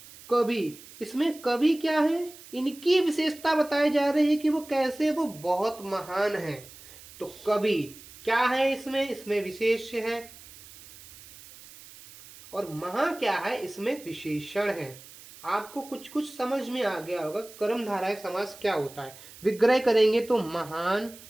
इसमें कवि क्या है, इनकी विशेषता बताई जा रही है कि वो कैसे, वो बहुत महान है। तो कवि क्या है, इसमें विशेष है। और महा क्या है, इसमें विशेषण है। आपको कुछ कुछ समझ में आ गया होगा कर्मधारय समास क्या होता है। विग्रह करेंगे तो महान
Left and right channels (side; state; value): right; noise; hiss, 19 dB below the sound